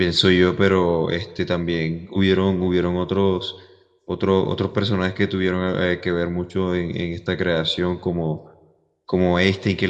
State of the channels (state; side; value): identical; both; correlation 1.00